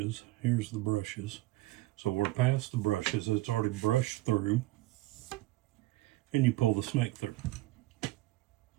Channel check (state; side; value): quieter; left; 18.4 dB